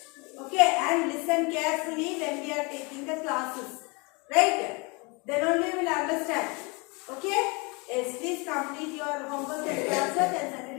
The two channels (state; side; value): quieter; right; 29.2 dB